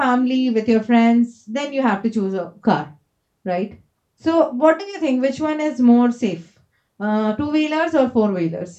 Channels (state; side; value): identical; both; correlation 1.00